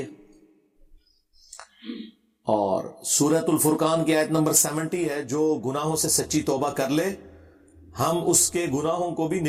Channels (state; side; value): identical; both; correlation 1.00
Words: ہے۔ اور سورۃ الفرقان کی آیت نمبر 70 ہے، جو گناہوں سے سچی توبہ کر لے ہم اس کے گناہوں کو بھی